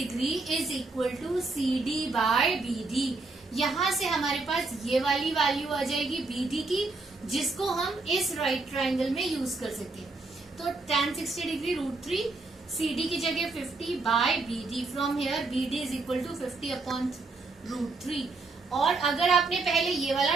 is equal to CD by BD. यहाँ से हमारे पास ये वाली वैल्यू आ जाएगी BD की, जिसको हम इस राइट ट्राइंगल में यूज कर सकते हैं. तो tan 60 डिग्री √3, CD की जगह 50 by BD. From here BD is equal to 50 upon √3. और अगर आपने पहले ये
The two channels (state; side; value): quieter; left; 3.6 dB